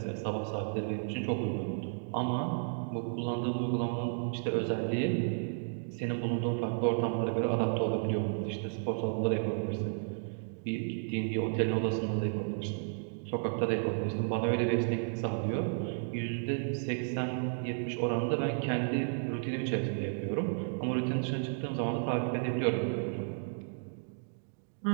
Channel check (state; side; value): silent; left; digital silence